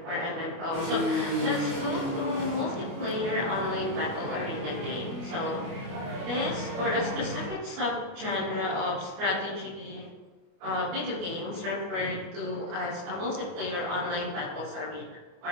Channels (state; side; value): late; left; 29 ms